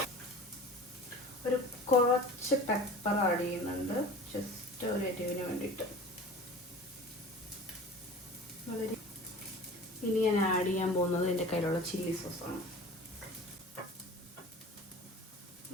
ഒരു കുറച്ച് പെപ്പർ ആഡ് ചെയ്യുന്നുണ്ട്, ജസ്റ്റ് ഒരു എരിവിന് വേണ്ടിയിട്ട്. ഇനി ഞാൻ ആഡ് ചെയ്യാൻ പോകുന്നത് എൻ്റെ കയ്യിലുള്ള ചില്ലി സോസാണ്.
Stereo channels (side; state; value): both; normal; correlation 0.39